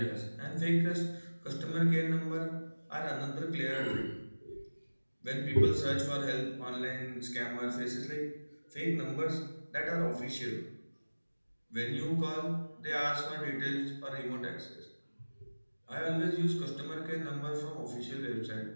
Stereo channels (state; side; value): inverted; both; correlation -1.00